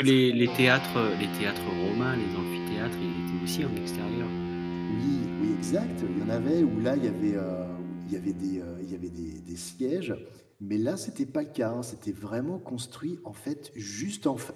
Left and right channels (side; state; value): both; identical; correlation 1.00